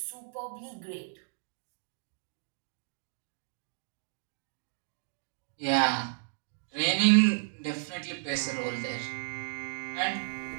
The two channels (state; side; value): silent; left; digital silence